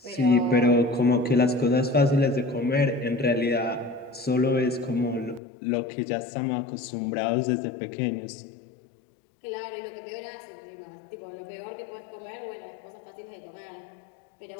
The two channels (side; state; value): right; drops out; at 5.4 s